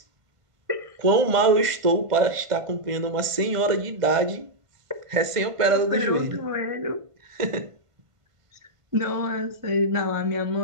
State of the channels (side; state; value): left; late; 1.5 ms